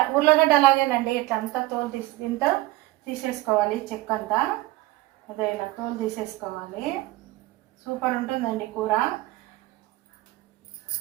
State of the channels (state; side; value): quieter; left; 18.3 dB